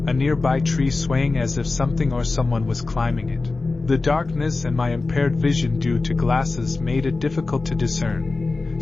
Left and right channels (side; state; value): right; quieter; 3.6 dB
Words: a nearby tree swaying as if something or someone was climbing it. The darkness and my impaired vision due to glasses made it difficult to discern,